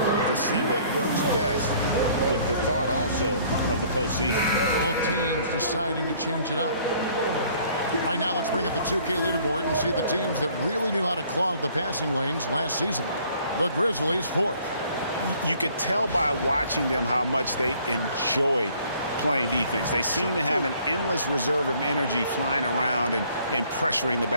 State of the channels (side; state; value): both; inverted; correlation -0.58